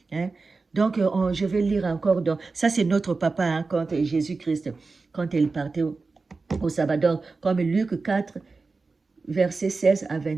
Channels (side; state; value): left; quieter; 4.0 dB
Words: Hein. Donc, je vais lire encore. Ça, c'est notre papa, hein, quand Jésus-Christ. quand elle partait au sabbat. Donc, comme Luc 4, versets 16 à